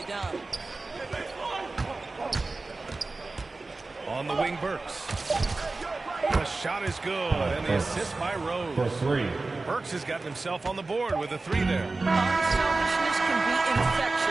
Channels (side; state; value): left; quieter; 3.5 dB